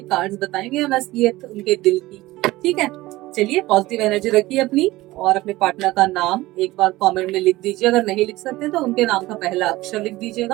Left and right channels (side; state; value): left; quieter; 18.4 dB